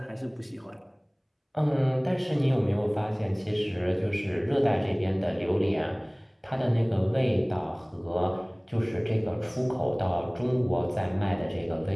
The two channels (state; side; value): identical; both; correlation 1.00